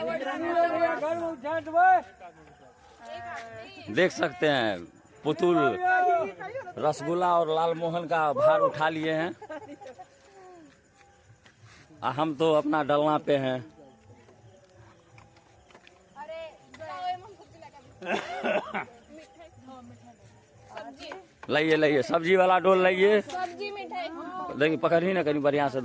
देख सकते हैं पुतुल रसगुल्ला और लाल मोहन का भार उठा लिए हैं, हम तो अपना डलना पे हैं। लाइए लाइए, सब्जी वाला डोल लाइए। सब्जी मिठाई देखिए पकड़ी ना, कहीं बढ़िया से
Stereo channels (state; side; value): identical; both; correlation 1.00